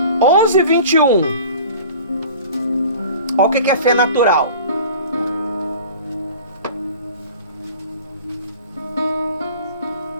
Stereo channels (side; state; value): both; inverted; correlation -0.42